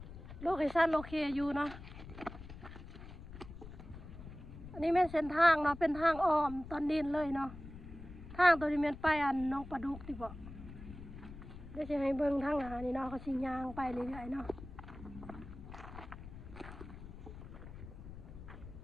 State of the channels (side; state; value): left; noise; rumble, 13 dB below the sound